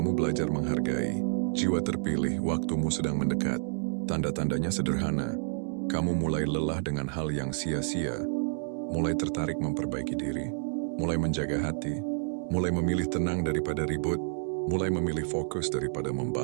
belajar menghargai. Jiwa terpilih, waktumu sedang mendekat. Tanda-tandanya sederhana. Kamu mulai lelah dengan hal yang sia-sia. Mulai tertarik memperbaiki diri. Mulai menjaga hati. Mulai memilih tenang daripada ribut. Mulai memilih fokus daripada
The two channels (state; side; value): silent; left; digital silence